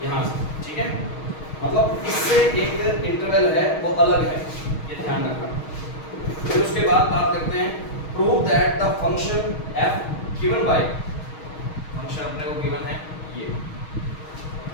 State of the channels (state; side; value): late; right; 6.4 ms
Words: यहाँ से, ठीक है। मतलब इससे एक इंटरवल है वो अलग है, ये ध्यान रखना। फिर उसके बाद बात करते हैं, prove that the function f given by, function अपने को गिवन है ये,